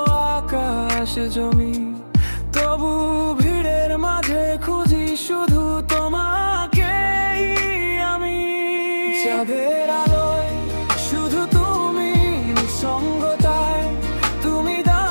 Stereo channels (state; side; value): inverted; both; correlation -1.00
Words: আকাশ জমি, তবু ভিড়ের মাঝে খুঁজি শুধু তোমাকেই আমি। চাঁদের আলোয় শুধু তুমি, নিঃসঙ্গতায় তুমি